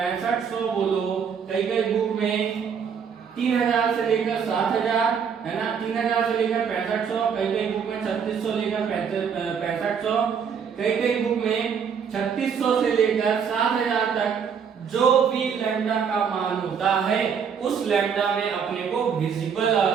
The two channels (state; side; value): quieter; left; 6.9 dB